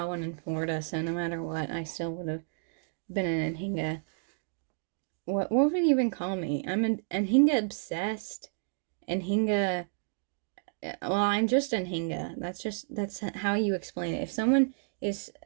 one in Florida, so no matter what, I still would have been an Anhinga. What would you even call me? I'm an Anhinga obsessed. Anhinga... Well, I'm just Anhinga. That's how you explain it. If someone is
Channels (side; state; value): left; silent; digital silence